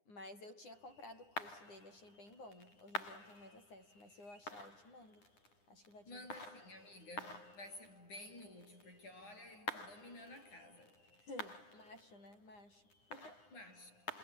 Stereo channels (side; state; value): right; late; 9.8 ms